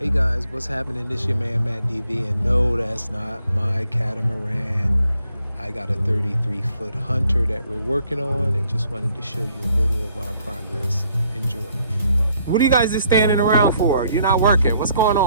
guys, what's happening? This your man Matt DV, and no, that's not my catamaran. I got a 33-foot Hunter that we're working on, and just wanted to show you a little of our progress. Enjoy. What are you guys just standing around for? You're not working. What's going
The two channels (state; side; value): inverted; both; correlation -0.68